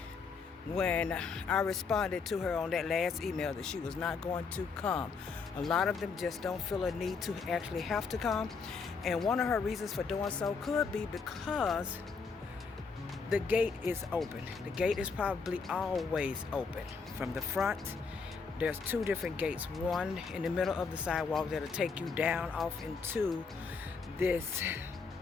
when I responded to her on that last email that she was not going to come. A lot of them just don't feel a need to actually have to come. And one of her reasons for doing so could be because the gate is open. The gate is probably always open. From the front, there's 2 different gates. One in the middle of the sidewalk that'll take you down off into this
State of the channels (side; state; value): right; quieter; 5.0 dB